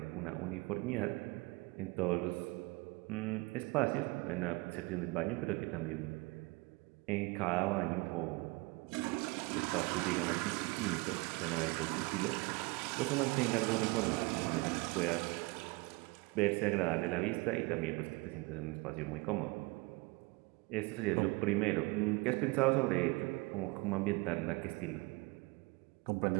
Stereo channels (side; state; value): left; quieter; 25.5 dB